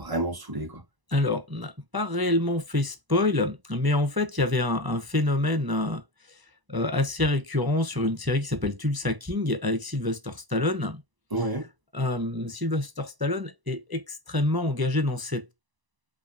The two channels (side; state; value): left; late; 1.0 ms